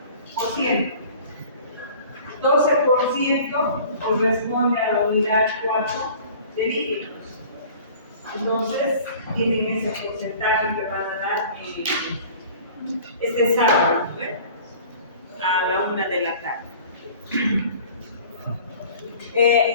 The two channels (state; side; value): inverted; both; correlation -0.46